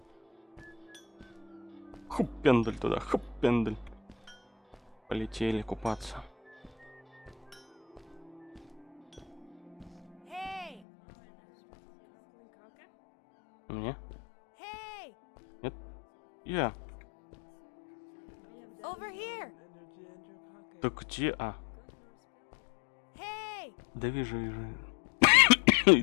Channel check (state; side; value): drops out; right; at 10.8 s